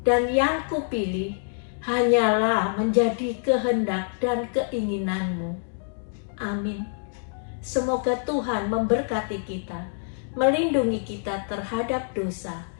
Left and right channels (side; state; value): right; silent; digital silence